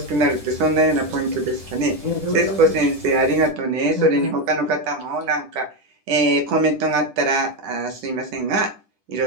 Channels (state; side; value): late; left; 10 ms